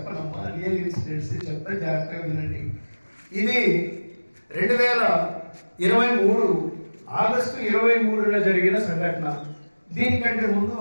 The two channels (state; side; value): inverted; both; correlation -1.00